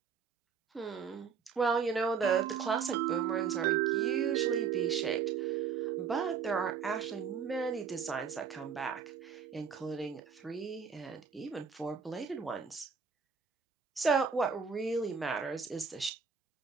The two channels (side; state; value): left; quieter; 6.2 dB